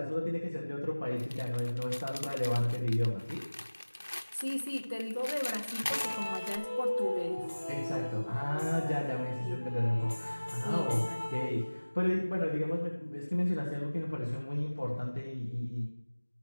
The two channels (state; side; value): inverted; both; correlation -1.00